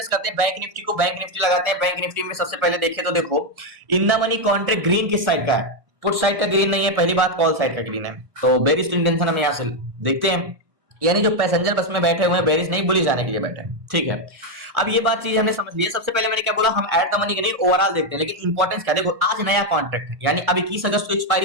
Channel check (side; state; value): left; late; 1.4 ms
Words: करते हैं बैंक निफ्टी को, बैंक निफ्टी लगाते हैं। बैंक निफ्टी में सबसे पहले देखें तो देखो, in the money contract green किस साइड का है, पुट साइड का ग्रीन नहीं है, पहली बात कॉल साइड का ग्रीन है। तो बेरिश इंटेंशन हम यहां से देखते हैं, यानी जो पैसेंजर बस में बैठे हुए हैं बेरिश नहीं, बुलिश जाने के लिए बैठे हैं। ठीक है, अब ये बात चीज हमने समझ ली है। सबसे पहले मैंने क्या बोला, हम ऐड द मनी के नहीं ओवरऑल देखते हैं, लेकिन इंपॉर्टेंस क्या, देखो आज नया कॉन्ट्रैक्ट है, यानी अब 21 अगस्त को